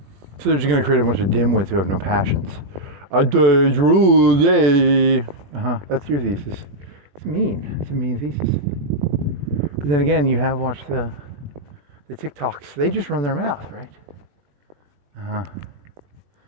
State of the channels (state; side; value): late; left; 21 ms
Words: So they're just gonna create a bunch of dimwits who have no passions. That's your thesis. It's mean. It's a mean thesis. But then again, you have watched the TikToks. They just run their mouth, right?